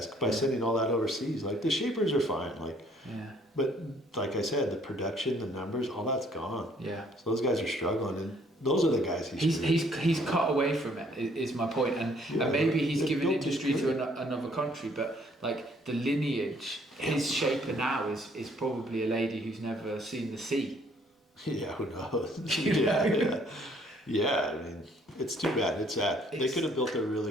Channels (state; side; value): normal; both; correlation 0.63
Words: by sending all that overseas. Like the shapers are fine, like, but like I said, the production, the numbers, all that's gone. So those guys are struggling, and those are the guys he's cut away from it. Is my point, and maybe he's given industry to another country, but like the lineage, his shaper now is probably a lady who's never seen the sea. Yeah, who knows? Yeah. I mean, it's too bad. It's sad. They could have built a